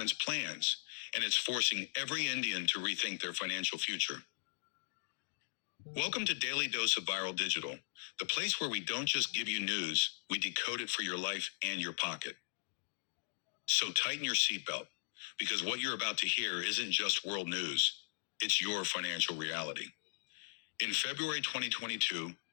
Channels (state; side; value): silent; right; digital silence